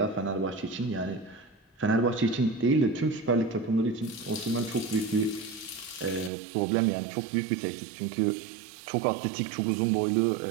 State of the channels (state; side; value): drops out; left; at 6.3 s